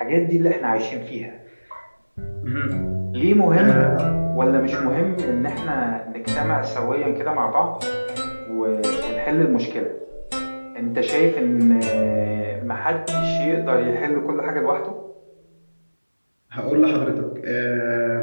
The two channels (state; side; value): inverted; both; correlation -1.00